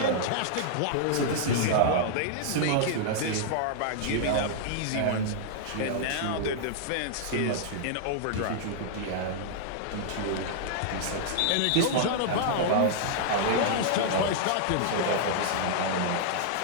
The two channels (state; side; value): different; both; correlation -0.01